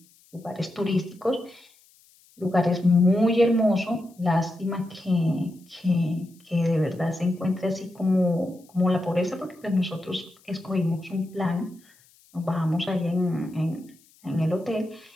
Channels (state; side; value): noise; left; hiss, 30 dB below the sound